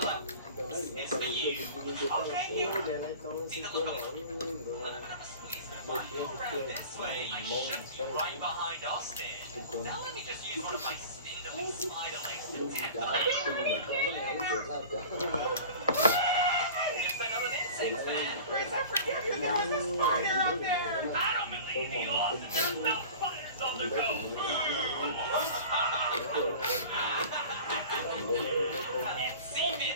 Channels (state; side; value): inverted; both; correlation -0.39